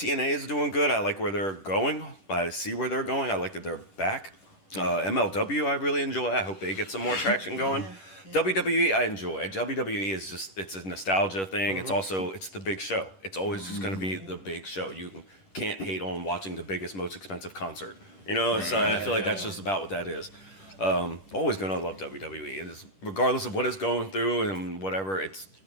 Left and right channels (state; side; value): late; right; 10 ms